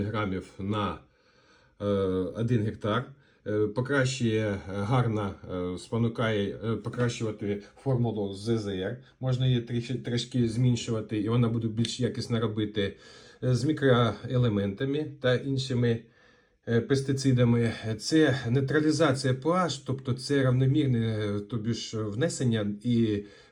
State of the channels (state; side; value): identical; both; correlation 1.00